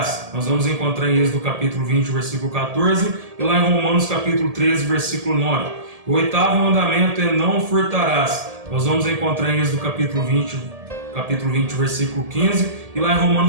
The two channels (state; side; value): late; left; 1.7 ms